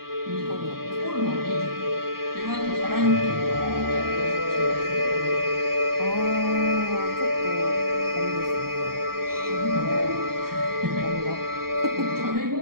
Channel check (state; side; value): late; left; 0.93 ms